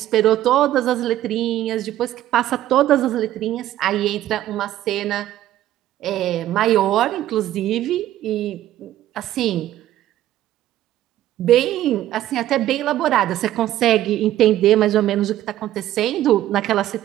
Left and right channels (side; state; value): left; quieter; 13.3 dB